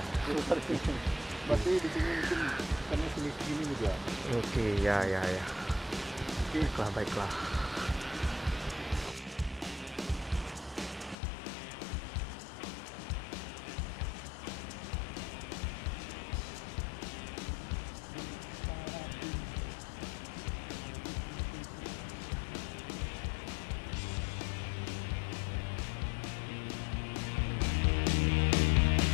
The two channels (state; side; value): drops out; right; at 11.2 s